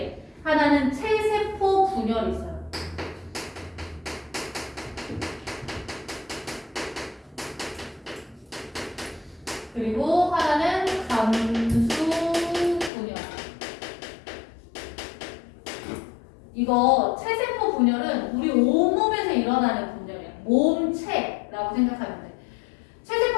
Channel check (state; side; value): drops out; right; at 12.9 s